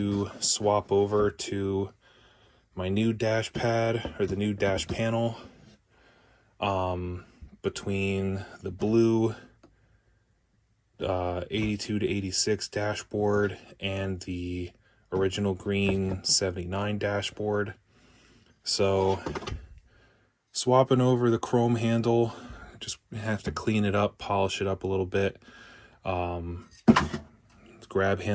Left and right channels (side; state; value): both; identical; correlation 1.00